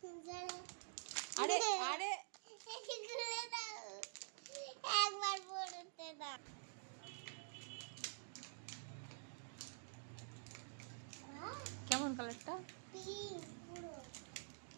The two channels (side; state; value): left; silent; digital silence